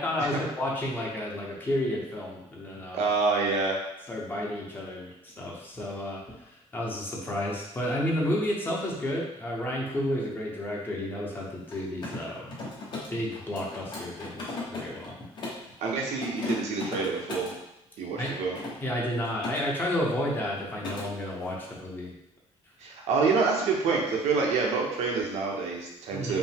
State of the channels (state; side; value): normal; both; correlation 0.53